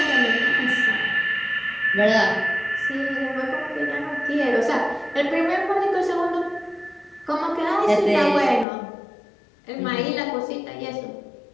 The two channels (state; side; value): drops out; right; at 8.7 s